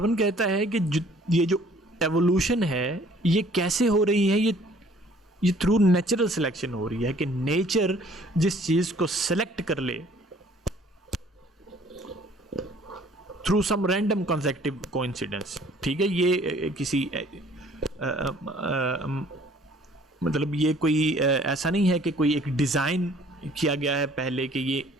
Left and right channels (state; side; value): normal; both; correlation 0.56